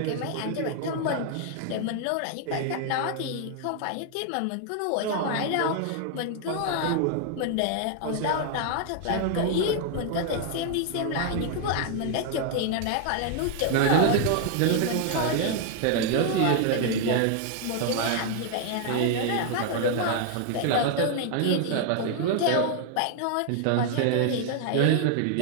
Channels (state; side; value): different; both; correlation 0.00